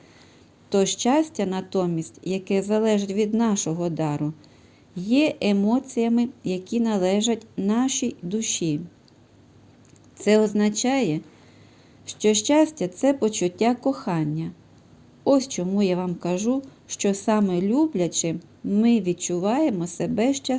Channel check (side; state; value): both; identical; correlation 1.00